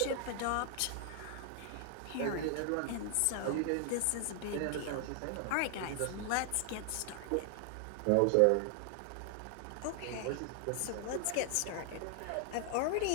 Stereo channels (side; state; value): both; different; correlation 0.00